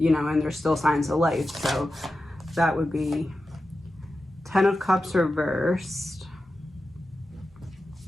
know, and there's still signs of life. So that would be 10 of Cups reversed.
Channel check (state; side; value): normal; both; correlation 0.92